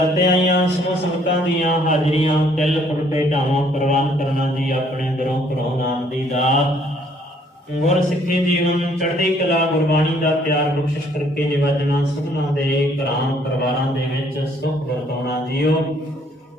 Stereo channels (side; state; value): both; normal; correlation 0.64